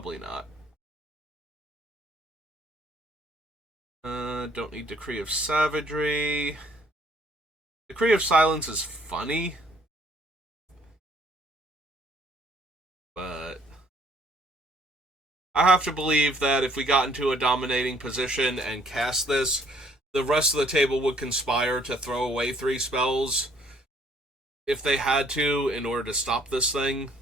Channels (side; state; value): both; normal; correlation 0.63